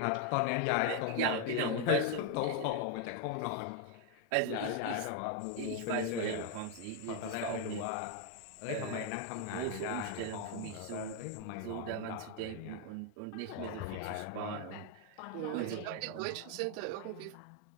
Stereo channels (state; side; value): different; both; correlation 0.01